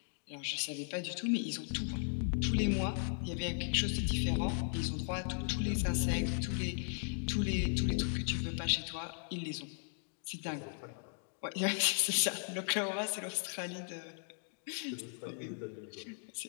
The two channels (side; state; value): right; silent; 53 dB below the other